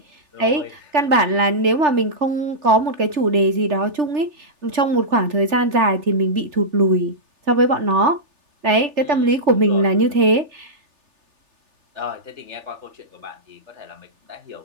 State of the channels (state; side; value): late; left; 3.4 ms